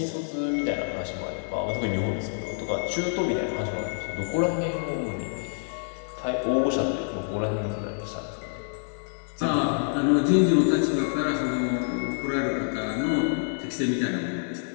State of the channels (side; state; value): right; silent; digital silence